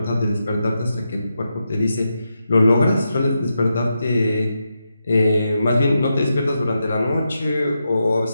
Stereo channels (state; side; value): inverted; both; correlation -0.86